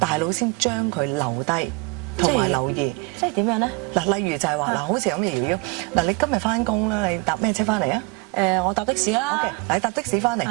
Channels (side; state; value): left; quieter; 28.2 dB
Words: 腦先將佢留低同埋留意。即係點樣咧？嗱，例如就係話嗱，好似咁嘅瑤瑤，嗱，你今日翻工啦，你搭咩車翻嚟啊？我搭的士啦。OK，嗱，你搭的士翻嚟，